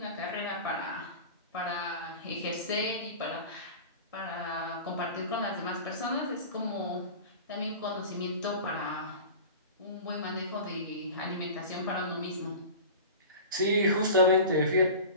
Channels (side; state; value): both; inverted; correlation -0.35